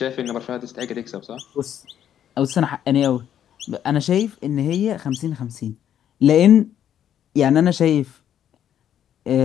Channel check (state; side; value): quieter; right; 10.0 dB